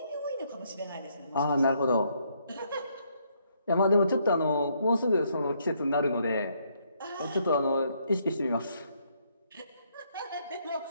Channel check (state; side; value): inverted; both; correlation -0.72